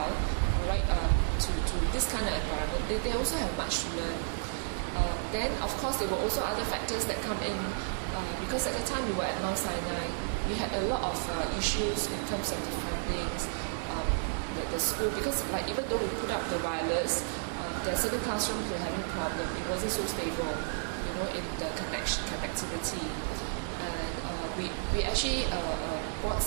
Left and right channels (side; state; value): left; silent; digital silence